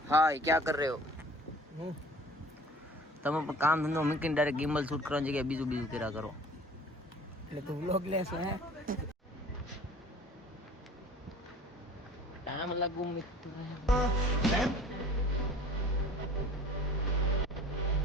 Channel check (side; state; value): both; normal; correlation 0.47